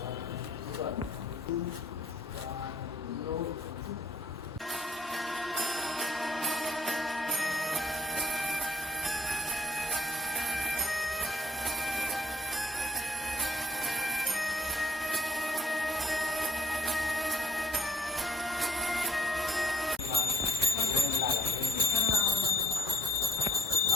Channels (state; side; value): normal; both; correlation 0.62